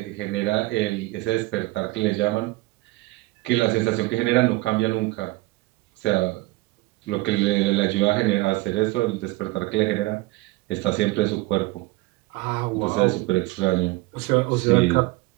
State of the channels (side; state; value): left; quieter; 21.0 dB